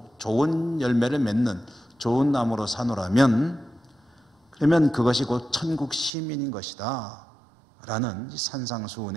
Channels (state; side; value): drops out; left; at 6.1 s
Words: 좋은 열매를 맺는 좋은 나무로 사노라면, 그러면 그것이 곧 천국 시민인 것이다 라는